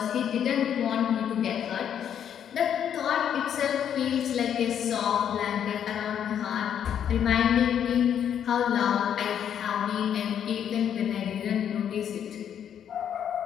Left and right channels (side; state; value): right; quieter; 9.1 dB